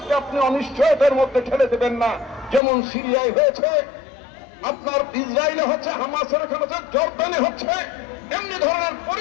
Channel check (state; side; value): drops out; right; at 2.6 s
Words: আপনি অনিশ্চয়তার মধ্যে ঠেলে দেবেন না। যেমন সিরিয়ায় হয়েছে, আপনার ইসরায়েলে হচ্ছে, হামাসের ওখানে হচ্ছে, জর্দানে হচ্ছে, এমনি ধরনের